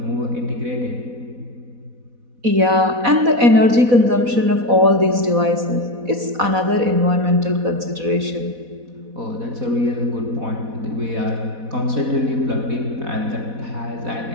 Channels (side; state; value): left; late; 4.1 ms